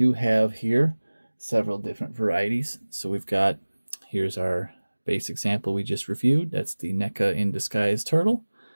have here several different varieties. So we've got, here's our base example we just reviewed. That's the NECA in Disguise Turtle.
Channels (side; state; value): both; inverted; correlation -1.00